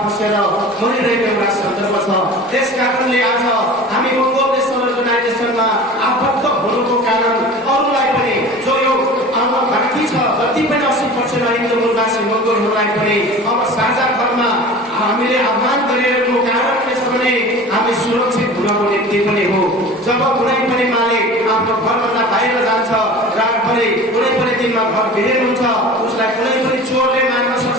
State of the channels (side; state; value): both; normal; correlation 0.38